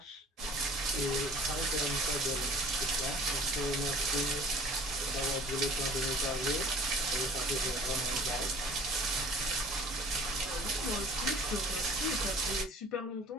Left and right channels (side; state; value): both; normal; correlation 0.49